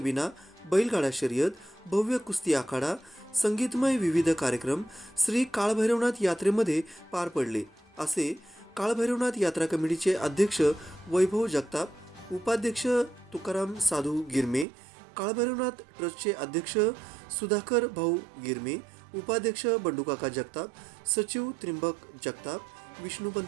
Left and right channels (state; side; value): drops out; left; at 14.7 s